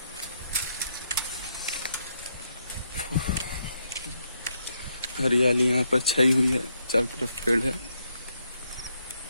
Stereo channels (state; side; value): inverted; both; correlation -0.77